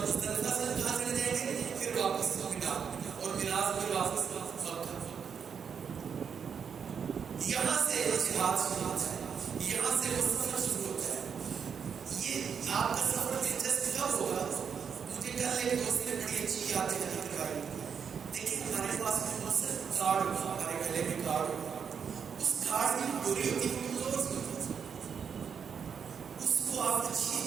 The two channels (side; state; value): left; quieter; 6.9 dB